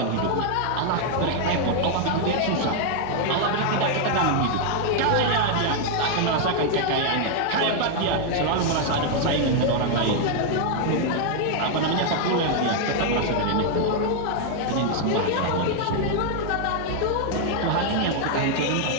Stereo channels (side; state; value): both; different; correlation 0.00